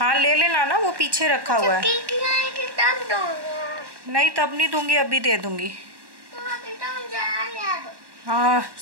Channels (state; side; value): late; left; 1.1 ms